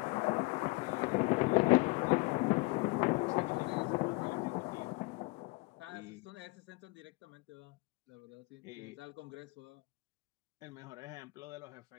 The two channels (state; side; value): quieter; right; 25.4 dB